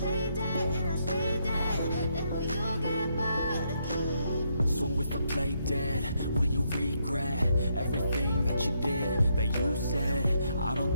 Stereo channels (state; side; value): inverted; both; correlation -0.76